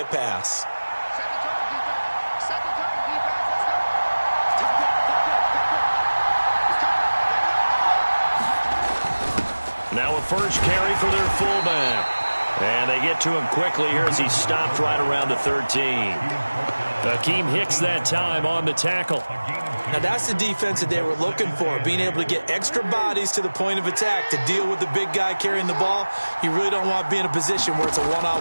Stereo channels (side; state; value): both; inverted; correlation -1.00